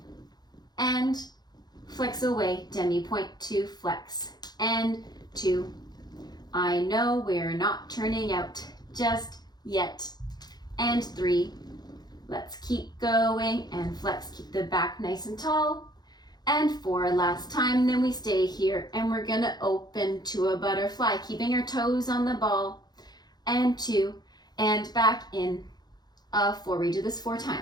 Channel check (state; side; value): late; right; 0.20 ms